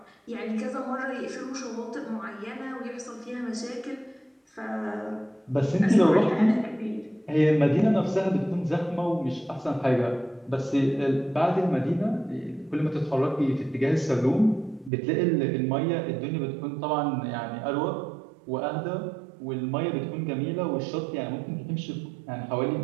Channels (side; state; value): left; drops out; at 14.9 s